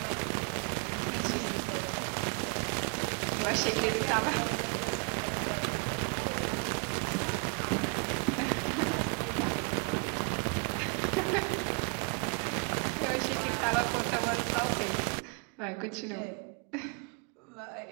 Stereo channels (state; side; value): quieter; left; 34.7 dB